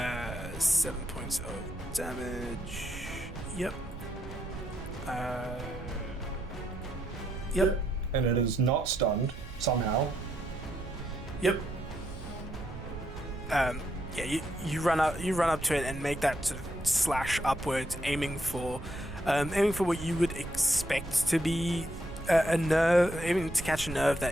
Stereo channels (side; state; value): right; noise; rumble, 12 dB below the sound